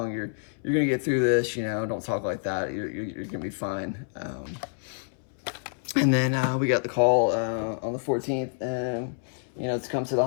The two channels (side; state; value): right; silent; 60 dB below the other